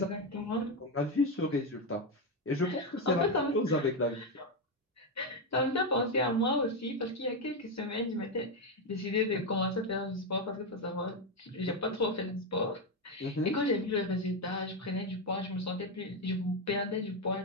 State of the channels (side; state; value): both; normal; correlation 0.08